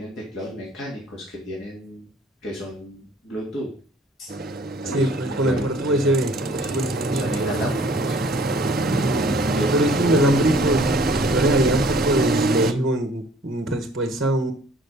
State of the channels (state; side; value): normal; both; correlation 0.55